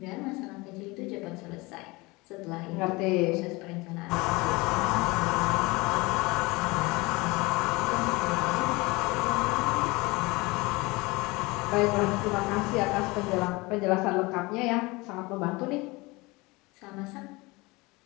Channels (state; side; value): quieter; right; 23.7 dB